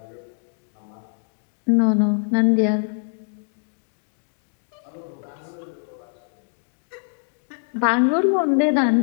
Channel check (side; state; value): right; silent; 63 dB below the other